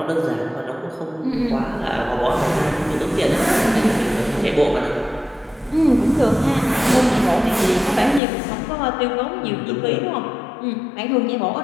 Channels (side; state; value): right; drops out; at 8.2 s